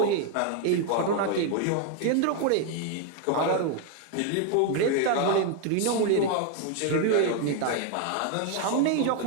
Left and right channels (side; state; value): both; different; correlation 0.00